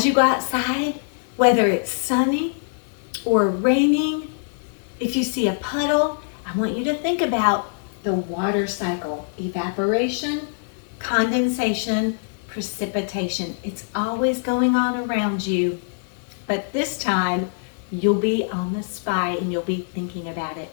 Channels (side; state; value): right; silent; digital silence